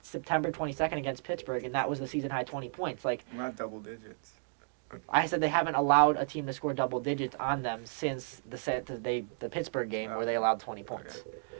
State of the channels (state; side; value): silent; left; digital silence